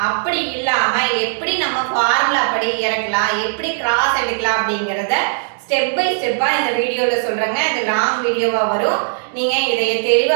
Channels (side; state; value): left; silent; digital silence